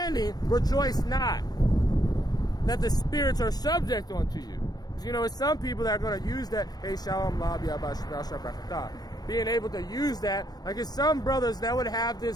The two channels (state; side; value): late; right; 0.19 ms